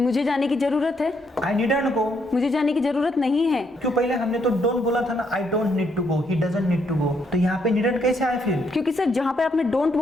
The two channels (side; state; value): both; normal; correlation 0.74